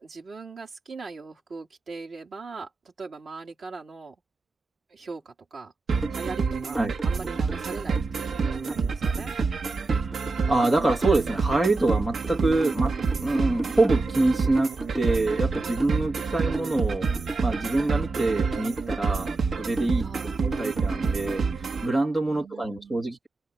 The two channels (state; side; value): quieter; left; 3.1 dB